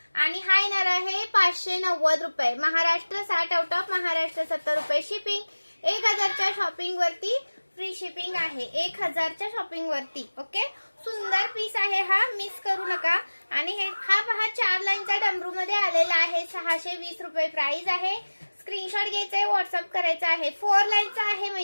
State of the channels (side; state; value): both; inverted; correlation -1.00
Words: आणि हा येणार आहे 590 रुपये। महाराष्ट्र 60 आउट ऑफ महाराष्ट्र 70 रुपये शिपिंग। 1000च्या शॉपिंग वरती फ्री शिपिंग आहे। 1000च्या शॉपिंग वरती ओके। सुंदर पीस आहे हा, मिस करू नका। आणि हा पहा 4 लाईनचा डमरू मध्ये आलेला आहे। 620 रुपये प्राइस आहे। स्क्रीनशॉट घ्यायचा आहे, व्हॉट्सअप करायचा आहे। 4 लाईनचा आहे